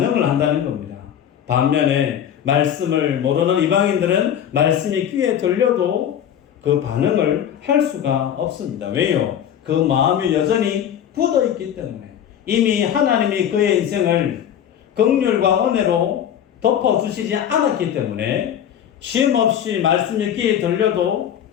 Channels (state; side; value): quieter; right; 9.7 dB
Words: 한다는 겁니다. 반면에 말씀을 모르는 이방인들은 말씀이 귀에 들려도 그 반응을 할 수가 없습니다. 왜요? 그 마음이 여전히 굳어 있기 때문에 이미 하나님이 그의 인생을 긍휼과 은혜로 덮어주시지 않았기 때문에 쉼없이 말씀이 귀에 들려도